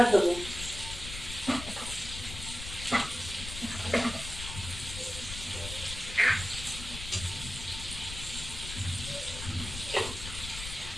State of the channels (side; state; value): left; noise; rumble, 9 dB below the sound